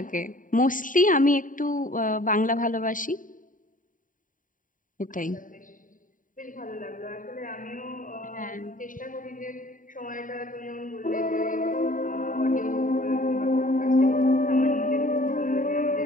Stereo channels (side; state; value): right; late; 0.39 ms